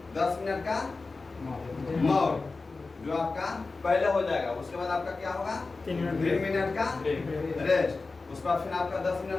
10 मिनट का मोड जो आपका पहले हो जाएगा। उसके बाद आपका क्या होगा? 3 मिनट का रेस्ट। उसके बाद फिर आपका 10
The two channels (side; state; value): right; quieter; 3.8 dB